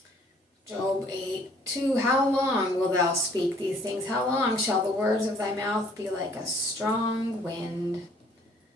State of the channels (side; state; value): both; normal; correlation 0.59